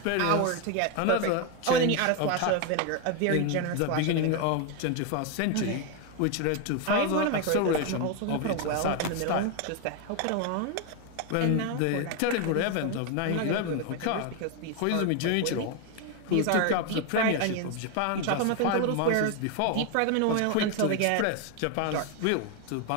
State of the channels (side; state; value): both; different; correlation 0.01